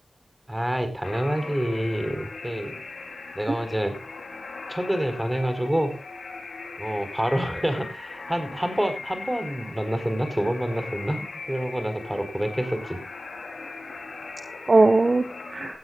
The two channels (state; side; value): normal; both; correlation 0.97